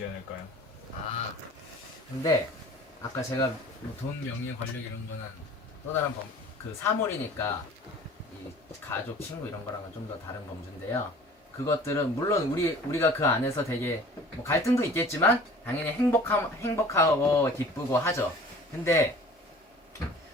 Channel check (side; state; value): both; normal; correlation 0.46